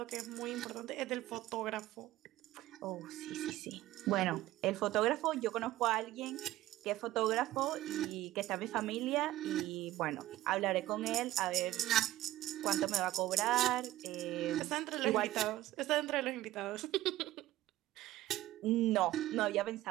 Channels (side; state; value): left; quieter; 15.4 dB